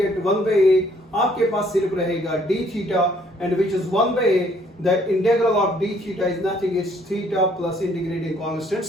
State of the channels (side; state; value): both; normal; correlation 0.64